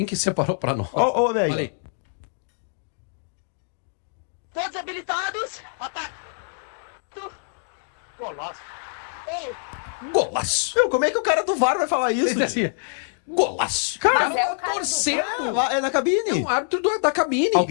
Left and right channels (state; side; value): silent; right; digital silence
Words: separou pra nós. Olha aí. Olha aí. Todos habilitados. Ataque. Golaço. Golaço. Meu, como é que o cara do VAR vai falar isso? Assim, golaço. Mas Cara, é o cara do torcendo. É na cabine. É um árbitro da cabine.